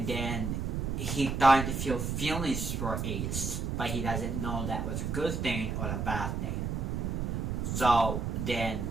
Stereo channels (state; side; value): noise; right; rumble, 1 dB below the sound